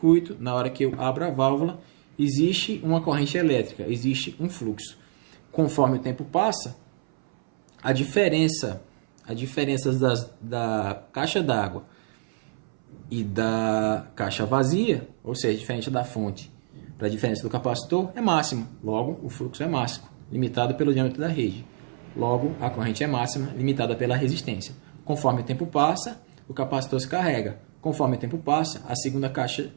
na hora que eu abro a válvula, existe uma corrente elétrica, existe um fluxo. Conforme o tempo passa, a diferença da caixa d'água e da caixa vazia, ou seja, diferente da fonte para a diferença do capacitor, é máxima. Logo, o fluxo é máximo, limitado pelo diâmetro da rede. Logo, a corrente é máxima, limitada pela resistência. Conforme o tempo passa, o capacitor se carrega. Conforme o tempo passa, a segunda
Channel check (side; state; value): left; silent; 61 dB below the other